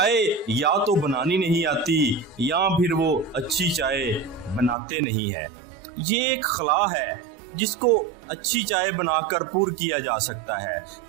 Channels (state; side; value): drops out; left; at 4.8 s